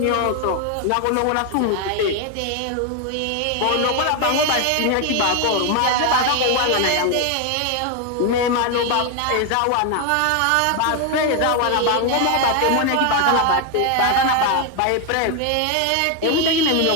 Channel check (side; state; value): both; different; correlation 0.01